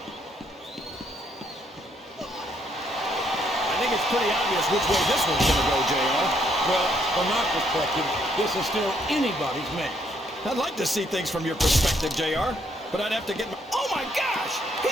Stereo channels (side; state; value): both; normal; correlation 0.71